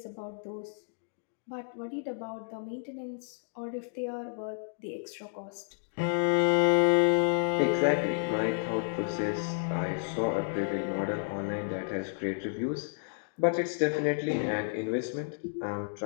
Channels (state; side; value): silent; right; digital silence